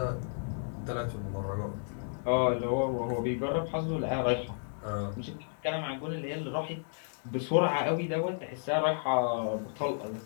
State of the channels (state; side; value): silent; right; digital silence